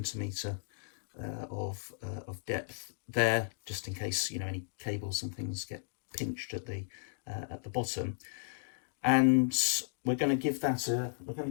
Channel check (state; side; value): silent; right; digital silence